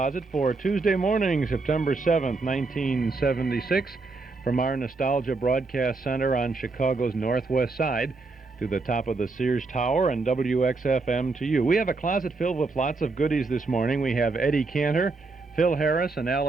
for Tuesday morning, September 7th, 1976, from our Nostalgia Broadcast Center on Chicago's northwest side to the top of the Sears Tower and WXFM to you. We have a closet filled with lots of goodies this morning. We have Eddie Cantor, Phil Harris and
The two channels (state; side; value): quieter; left; 3.8 dB